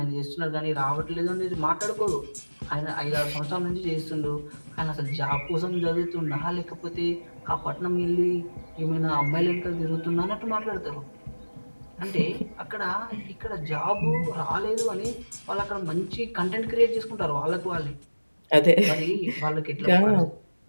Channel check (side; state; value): both; inverted; correlation -1.00